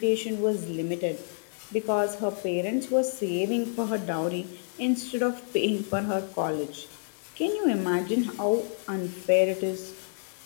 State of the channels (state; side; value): silent; right; digital silence